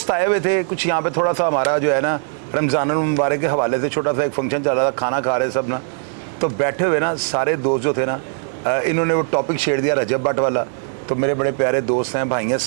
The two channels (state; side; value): silent; left; 66 dB below the other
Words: आए हुए थे कुछ यहाँ पे, थोड़ा सा हमारा जो है ना रमज़ान मुबारक के हवाले से छोटा सा एक फंक्शन चल रहा था, खाना खा रहे सब ना, तो बैठे हुए ना सारे दोस्त जो थे ना, इन्होंने वो टॉपिक छेड़ दिया रजब भट्ट वाला। तो मेरे बड़े प्यारे दोस्त हैं, भाई हैं